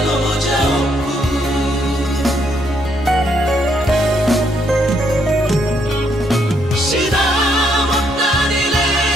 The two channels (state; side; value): normal; both; correlation 0.73